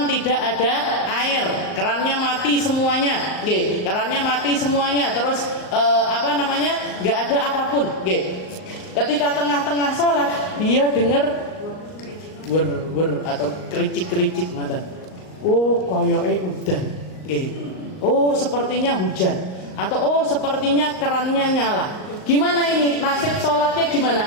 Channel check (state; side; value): late; right; 38 ms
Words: tidak ada air, kerannya mati semuanya, terus nggak ada apapun, ketika tengah-tengah sholat dia dengar wer atau kericik ngoten. Koyoke udan, sepertinya hujan. Atau sepertinya kerannya nyala. Gimana ini? Nasib sholatnya gimana?